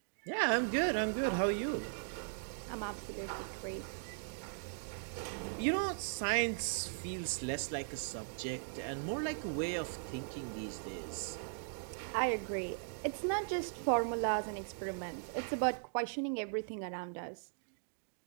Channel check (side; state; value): left; silent; digital silence